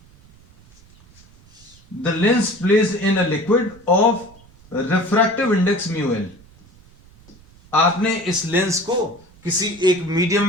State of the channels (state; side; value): noise; right; rumble, 26 dB below the sound